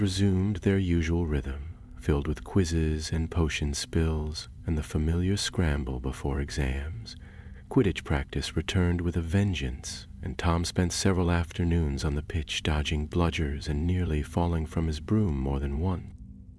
resumed their usual rhythm, filled with quizzes and potion spills and the familiar scramble before exams. Quidditch practice returned with a vengeance, and Tom spent several afternoons on the pitch dodging bludgers and nearly falling from his broom more than once.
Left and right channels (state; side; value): identical; both; correlation 1.00